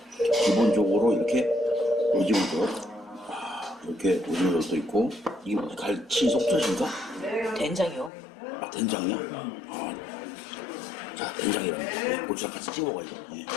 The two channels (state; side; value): drops out; right; at 8.1 s